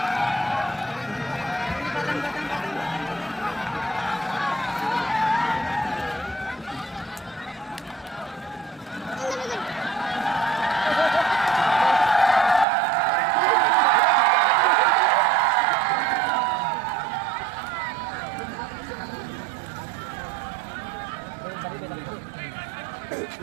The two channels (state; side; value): drops out; left; at 12.7 s